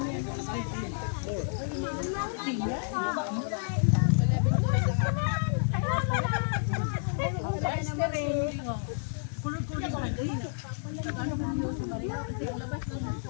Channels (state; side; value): silent; right; digital silence